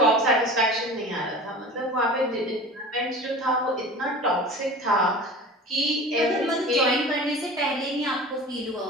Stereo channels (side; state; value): both; normal; correlation 0.37